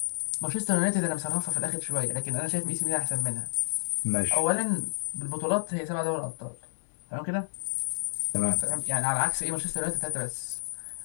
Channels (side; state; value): right; silent; digital silence